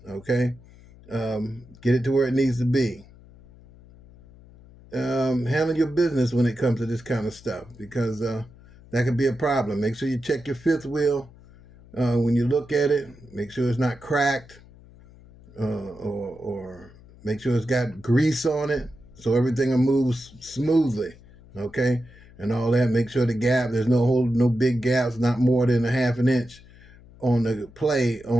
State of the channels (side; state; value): left; noise; hum, 23 dB below the sound